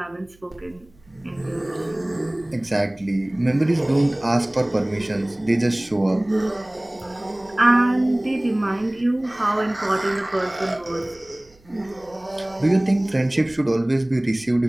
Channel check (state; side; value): noise; right; hum, 29 dB below the sound